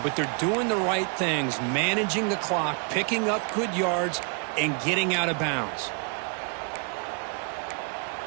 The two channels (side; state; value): left; quieter; 38.7 dB